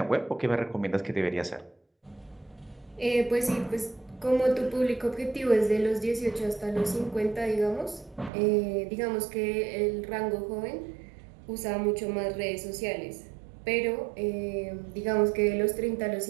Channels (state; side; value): drops out; left; at 8.3 s